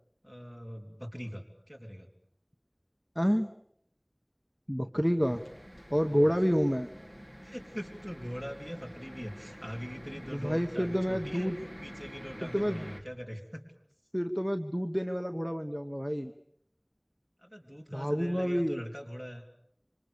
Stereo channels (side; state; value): both; identical; correlation 1.00